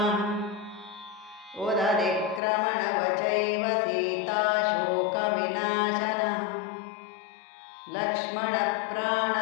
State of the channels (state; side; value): drops out; right; at 2.4 s